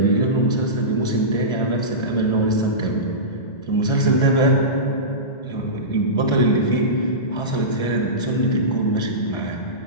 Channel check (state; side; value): late; right; 1.3 ms